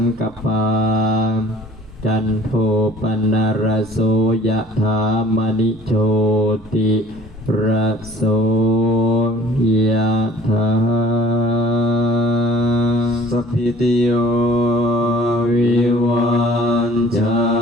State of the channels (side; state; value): left; noise; hum, 27 dB below the sound